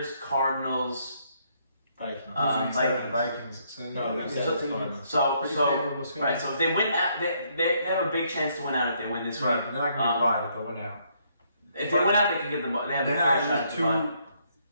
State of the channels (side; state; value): both; inverted; correlation -0.71